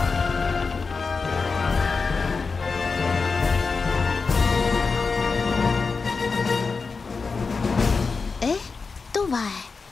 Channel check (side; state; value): right; quieter; 4.6 dB